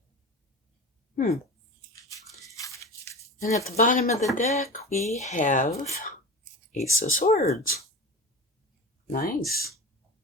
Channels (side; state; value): both; normal; correlation 0.31